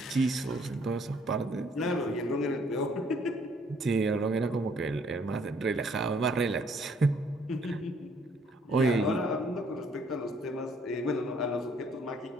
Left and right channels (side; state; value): both; normal; correlation 0.64